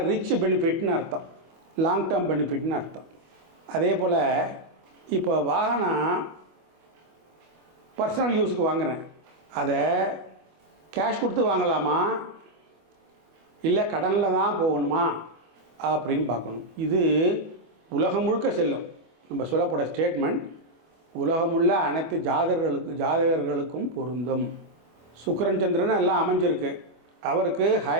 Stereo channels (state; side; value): late; left; 25 ms